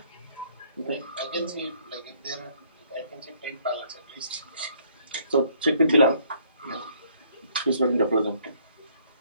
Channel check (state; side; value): inverted; both; correlation -0.64